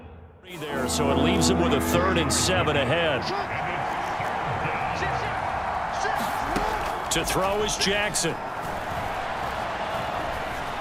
3 there, so it leaves him with a 3rd and 7 ahead. To throw is Jackson.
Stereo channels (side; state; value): both; identical; correlation 1.00